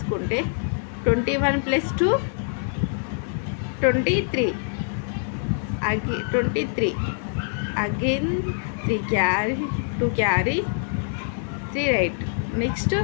21 + 2 23 23 అగైన్ 3 క్యారీ 2 క్యారీ 3 రైట్. నెక్స్ట్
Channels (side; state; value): right; silent; 56 dB below the other